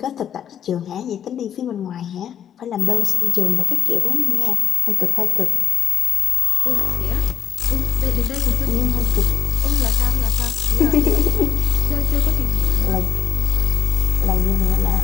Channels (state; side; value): quieter; right; 9.5 dB